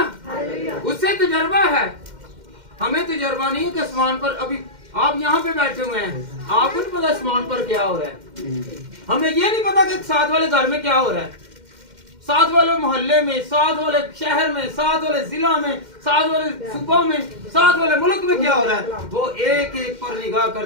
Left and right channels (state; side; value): late; left; 2.1 ms